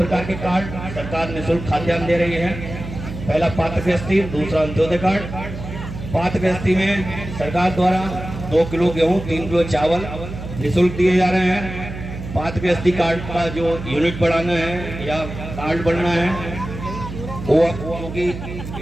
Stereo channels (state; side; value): noise; right; hum, 9 dB below the sound